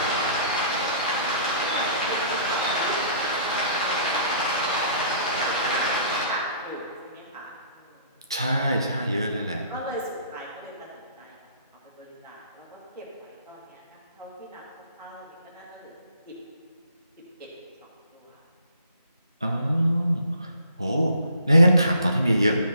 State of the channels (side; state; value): both; inverted; correlation -0.55